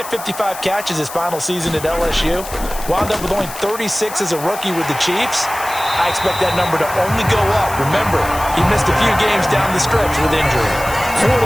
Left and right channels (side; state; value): left; noise; hiss, 12 dB below the sound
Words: 55 catches his final season at LSU. Wound up with only 36 as a rookie with the Chiefs. I expect that number to only go up. Remember, he missed a few games down the stretch with injury. 40